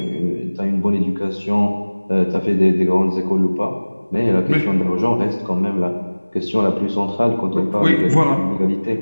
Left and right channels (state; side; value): inverted; both; correlation -1.00